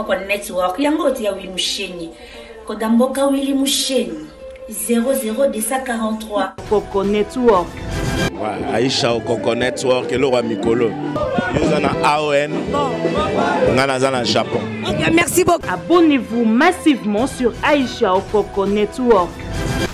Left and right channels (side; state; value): both; identical; correlation 1.00